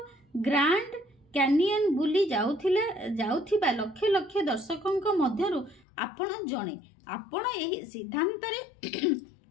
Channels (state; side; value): drops out; right; at 5.9 s